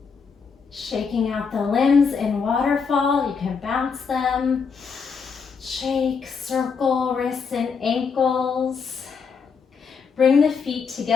Shaking out the limbs in waterfall. You can bounce them. Shake, circle, wrists and ankles. Bring the feet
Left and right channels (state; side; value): quieter; right; 5.6 dB